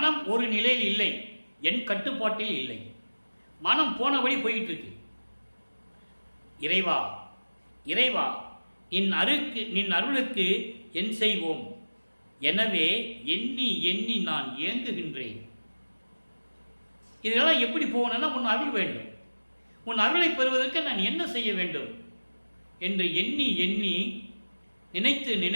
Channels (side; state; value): both; inverted; correlation -1.00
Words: ஒரு நிலையில் இல்லை, என் கட்டுப்பாட்டில் இல்லை. மனம் போனபடி போயிட்டு இருக்கு. இறைவா இறைவா நின் அருளுக்கு என் செய்வோம், எனவே எண்ணி எண்ணி நான் ஏங்குகின்றேன். இதெல்லாம் எப்படி போகணும்னா உன் அருள் வேண்டும், உன் அருளை பெறுவதற்கு நான் என்ன செய்ய வேண்டும் என்று எண்ணி எண்ணி நினைத்து